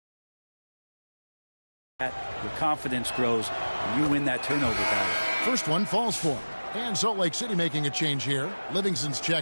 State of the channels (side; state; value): both; inverted; correlation -1.00